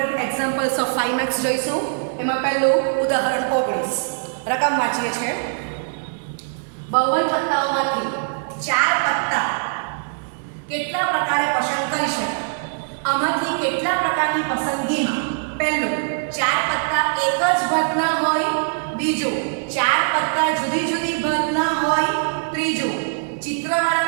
examples of 5 marks જોઈશું. એમાં પહેલું ઉદાહરણ 19. રકમ વાંચીએ છીએ. 52 પત્તાઓમાંથી 4 પત્તા કેટલા પ્રકારે પસંદ કરી શકાય? આમાંથી કેટલા પ્રકારની પસંદગીમાં પહેલું 4 પત્તા એક જ ભાગના હોય, બીજું 4 પત્તા જુદી જુદી ભાગના હોય, ત્રીજું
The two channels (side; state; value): left; silent; digital silence